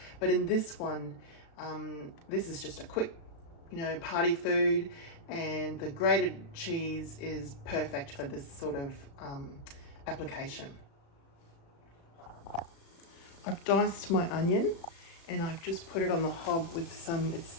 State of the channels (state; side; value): late; right; 36 ms